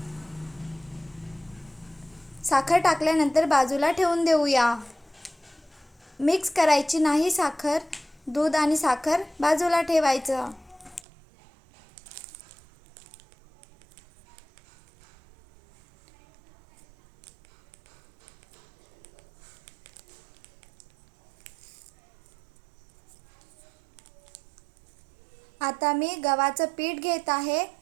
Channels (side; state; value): left; drops out; at 11.0 s